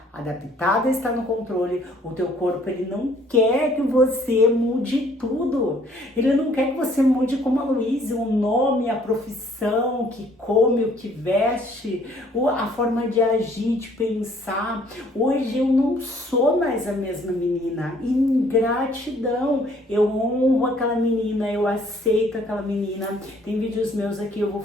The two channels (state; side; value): normal; both; correlation 0.60